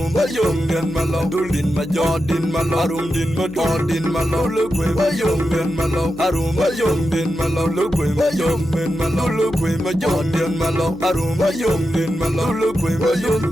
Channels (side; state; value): right; noise; hum, 17 dB below the sound